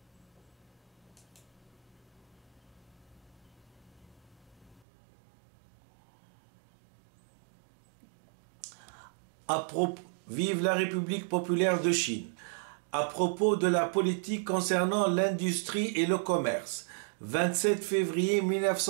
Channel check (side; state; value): left; drops out; at 4.8 s